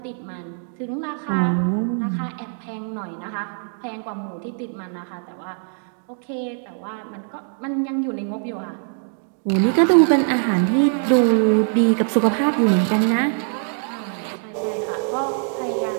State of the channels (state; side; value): silent; left; 64 dB below the other